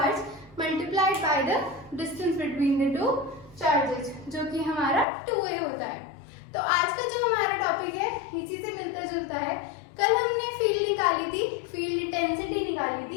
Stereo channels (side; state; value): right; drops out; at 5.1 s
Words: multiplied by the distance between the two charges, जो कि हमारा 2a होता है। तो आज का जो हमारा टॉपिक है इसी से मिलता जुलता है। कल हमने फील्ड निकाली थी, फील्ड इंटेंसिटी निकाली